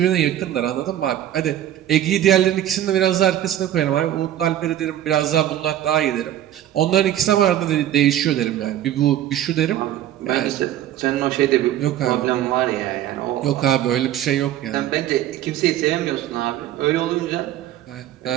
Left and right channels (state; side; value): quieter; left; 12.0 dB